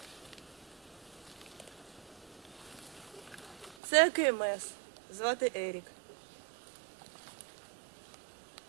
Це КМС. Звати Ерік.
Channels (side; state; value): left; drops out; at 3.8 s